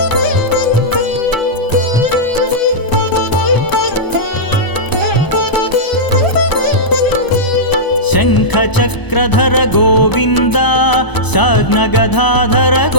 शङ्खचक्रधर गोविन्द साग्नगधाधर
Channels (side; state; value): right; late; 1.0 ms